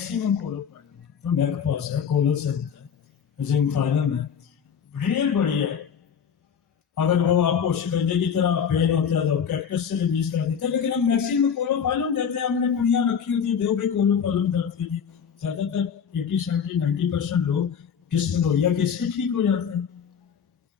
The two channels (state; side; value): quieter; right; 7.3 dB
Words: कोलोफाइलम। तो मेरे पास है कोलोसेंट है, जिंकफाइलम है, रियल बढ़िया है। अगर वो आपको शिकंजे की तरह पेन होता है तो कैक्टस से रिलीज कर देते हैं, लेकिन हम मैक्सिमम कोलोफाइलम देते हैं। हमने पुड़ियाँ रखी होती है, दो भी कोलोफाइलम दर्द के लिए। ज़्यादातर 80, 70, 90% लोग डिस्मेनोरिया के इससे ठीक हो जाते हैं।